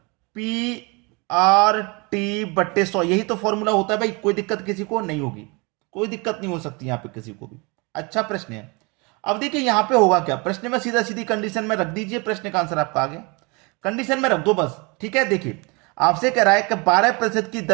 PRT/100, यही तो फॉर्मूला होता है भाई। कोई दिक्कत किसी को नहीं होगी, कोई दिक्कत नहीं हो सकती यहां पे किसी को भी। अच्छा प्रश्न है। अब देखिए यहां पे होगा क्या, प्रश्न में सीधा सीधी कंडीशन में रख दीजिए, प्रश्न का आंसर आपका आ गया। कंडीशन में रख दो बस। ठीक है, देखिए आपसे कह रहा है कि 12% की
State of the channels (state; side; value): quieter; left; 28.7 dB